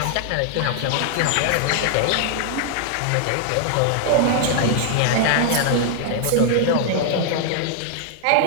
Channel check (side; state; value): both; different; correlation 0.00